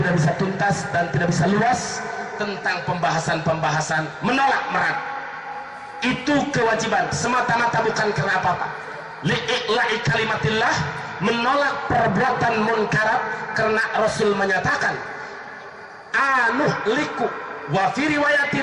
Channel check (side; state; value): both; identical; correlation 1.00